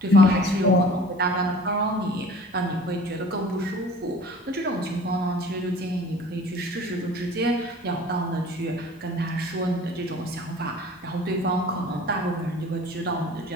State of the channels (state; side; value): normal; both; correlation 0.46